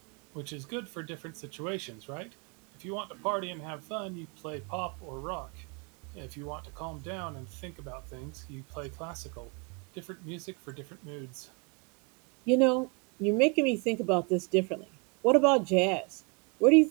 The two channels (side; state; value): left; quieter; 32.4 dB